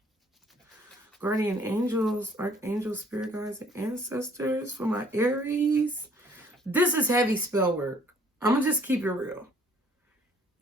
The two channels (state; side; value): normal; both; correlation 0.60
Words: Guardian angels, archangels, spirit guides, and ancestors for my Aries. This is heavy spell work. I'm going to just keep it real.